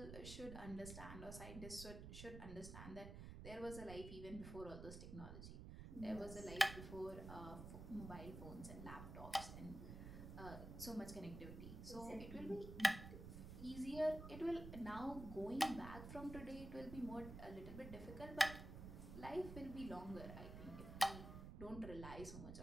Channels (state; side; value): noise; right; rumble, 9 dB below the sound